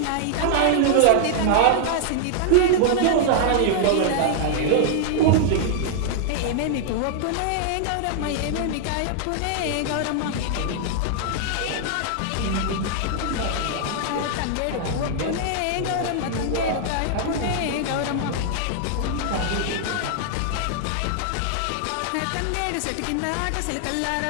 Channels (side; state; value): both; different; correlation -0.01